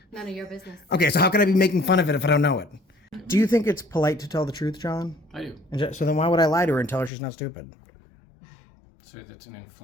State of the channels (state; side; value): drops out; right; at 7.1 s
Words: None of your business. Okay, so how can I be making fun of it if I don't know it? Do you think it's polite to tell the truth, John? I do. So then why would I lie to her and tell her she's not stupid? So that's an